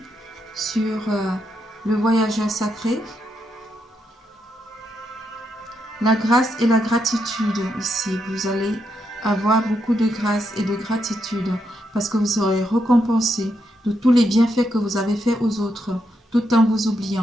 sur le voyageur sacré. La grâce et la gratitude ici. Vous allez avoir beaucoup de grâce et de gratitude parce que vous serez récompensé de tous les bienfaits que vous avez faits aux autres, tout en vous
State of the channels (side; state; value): both; normal; correlation 0.81